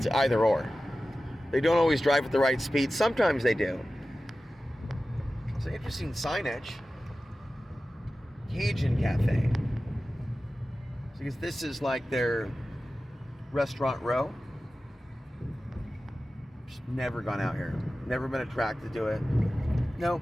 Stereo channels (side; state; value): both; normal; correlation 0.95